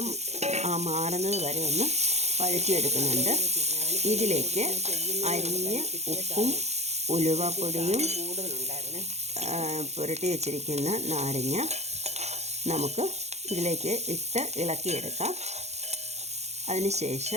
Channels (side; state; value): left; late; 0.32 ms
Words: മാറുന്നത് വരെ ഒന്ന് വഴറ്റിയെടുക്കുന്നുണ്ട്. ഇതിലേക്ക് അരിഞ്ഞ് ഉപ്പും ഉലുവാപ്പൊടിയും പുരട്ടി വെച്ചിരിക്കുന്ന നാരങ്ങ നമുക്ക് ഇതിലേക്ക് ഇട്ട് ഇളക്കിയെടുക്കാം.